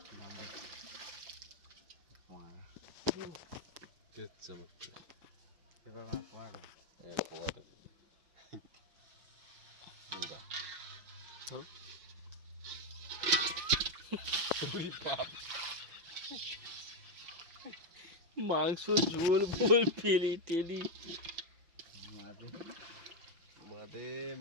কে চমৎকার এবার মাছ মারো। একেবারে ধরো। মাংস ঝোল বোল টেলি টেলি। মাঝে মাদে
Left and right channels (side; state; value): left; late; 5.9 ms